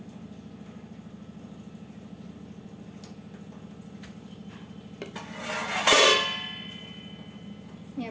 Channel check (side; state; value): both; identical; correlation 1.00